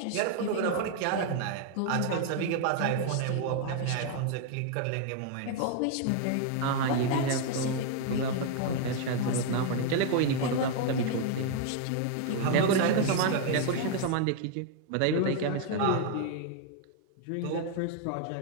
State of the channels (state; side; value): different; both; correlation 0.00